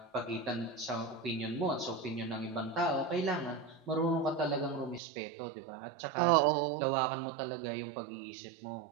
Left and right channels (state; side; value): drops out; left; at 5.0 s